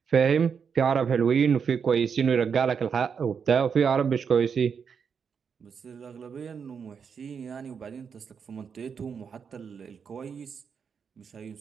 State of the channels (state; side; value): quieter; left; 6.5 dB